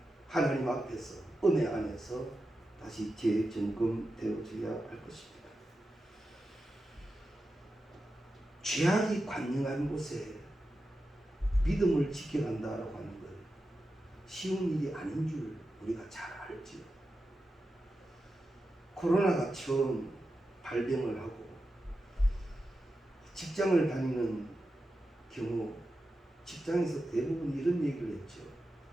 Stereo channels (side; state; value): both; normal; correlation 0.91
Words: 하나님 앞에서 은혜 안에서 다시 재점검되어져야 할 것입니다. 죄악이 관영한 곳에 믿음을 지켜간다라고 하는 것 쉬운 일이 아닌 줄 우리가 잘 알지요. 코로나가 처음 발병을 하고 직장을 다니는 경우 직장에서 대부분 이런 얘기를 했죠.